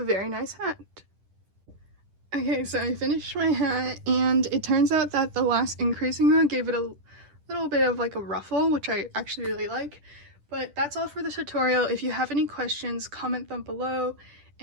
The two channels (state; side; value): late; left; 10 ms